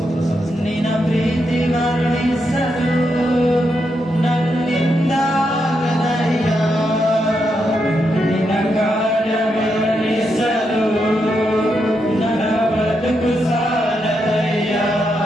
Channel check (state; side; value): normal; both; correlation 0.82